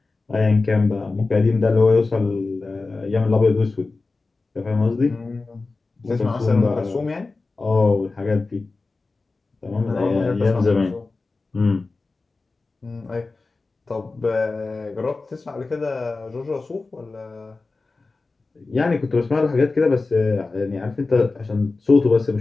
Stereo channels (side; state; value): right; quieter; 3.7 dB